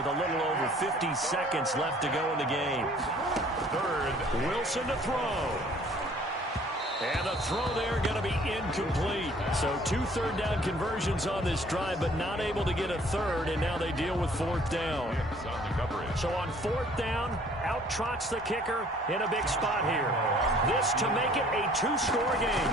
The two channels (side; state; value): both; normal; correlation 0.56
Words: a little over 50 seconds left to go in the game. 3rd, Wilson to throw. And the throw there going to be incomplete. So 2 third-down conversions on this drive, but not able to get a 3rd, and now they deal with 4th down. So on 4th down, out trots the kicker in a big spot here. This to make it a 2-score